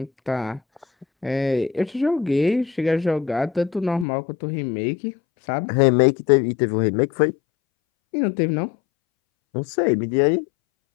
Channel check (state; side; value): drops out; right; at 4.0 s